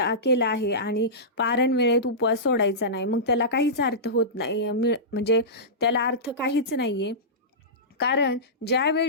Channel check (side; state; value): both; normal; correlation -0.17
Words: केला आहे आणि पारण वेळेत उपवास सोडायचा नाही, मग त्याला काहीच अर्थ होत नाही. म्हणजे त्याला अर्थ काहीच नाहीये. कारण